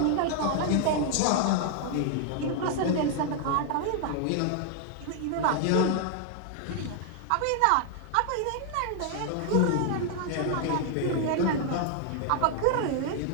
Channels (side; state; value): both; different; correlation 0.00